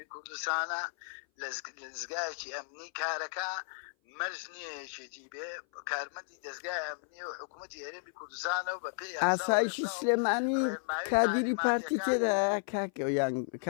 کوردستانە لەزگایەکی ئەمنی کارەکە مەرج نییە یەکێتی بێ کارمەندی دەستگای ئەمنی و حکوومەتی هەرێمی کوردستانە و بە پێی ئاسایشی سلێمانی کادیری پارتی تێدا کاکە یان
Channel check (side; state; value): right; silent; 55 dB below the other